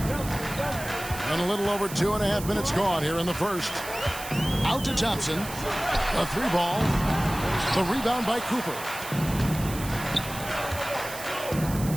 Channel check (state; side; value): noise; right; hiss, 11 dB below the sound